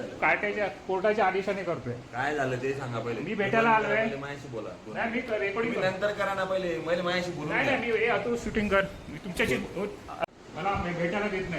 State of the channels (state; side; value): identical; both; correlation 1.00